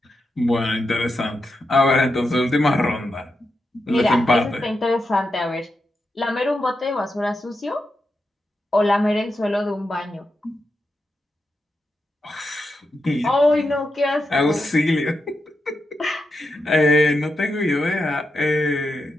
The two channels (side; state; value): both; normal; correlation 0.87